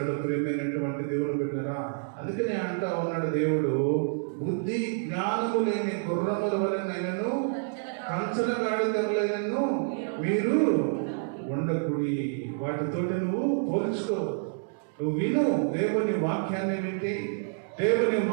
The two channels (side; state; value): left; silent; 59 dB below the other